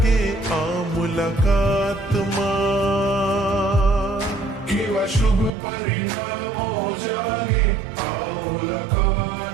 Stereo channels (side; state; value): left; drops out; at 5.5 s